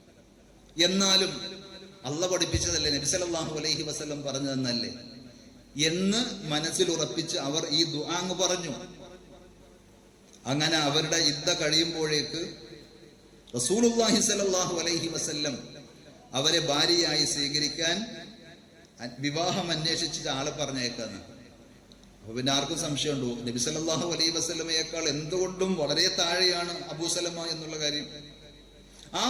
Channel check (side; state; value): both; identical; correlation 1.00